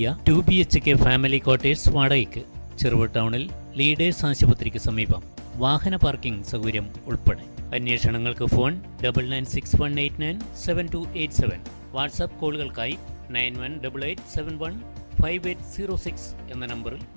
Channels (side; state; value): both; inverted; correlation -1.00